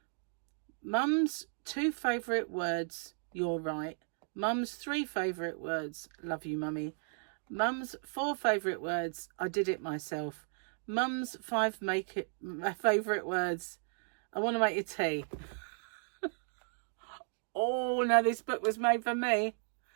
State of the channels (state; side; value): silent; left; 54 dB below the other